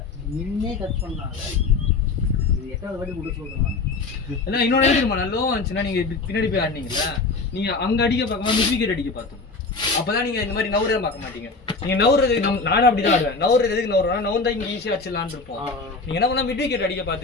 நின்னே கட் பண்ணாங்க. இது 8வது வாட்டி கொடுத்து சொல்றேன். எல்லாம் இன்னொன்று தெரியுமா, லோ வந்துச்சுன்னா நீங்க பின்னாடி போய் ஆடினீங்களா, நீங்க அங்க அடிக்க பார்க்காம மிஸ் விக்கெட் அடிக்க பார்த்தோம். அப்பதான் நீங்க இந்த மாதிரி நவுறதை பார்க்க மாட்டீங்க. நீங்க நவுறது நானும் அப்படிதான் ஆடுவேன். நவுறது எதுக்கு நவுறா, நவுந்தா இங்க ஈஸியா அடிச்சிடலான்னு இருப்போம். நீங்க என்ன பண்ணா மிட் விக்கெட் அடிக்க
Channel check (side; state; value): right; quieter; 4.0 dB